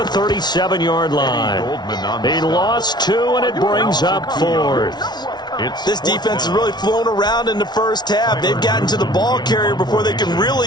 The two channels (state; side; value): late; right; 0.20 ms